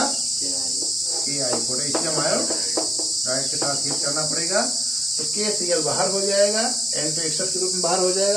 Ki, पोटेशियम आयोडाइड के साथ हीट करना पड़ेगा। तो KCl बाहर हो जाएगा, N2 एक्सेस के रूप में बाहर हो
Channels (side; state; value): both; normal; correlation 0.91